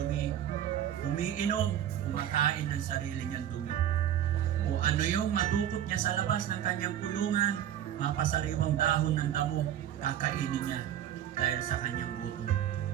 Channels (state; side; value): quieter; left; 10.7 dB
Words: umiinom, kumakain ng sarili niyang dumi. O ano yung madukot niya sa labas ng kanyang kulungan, mapasariwang dahon ng damo, kakainin niya dahil sa kanyang gutom.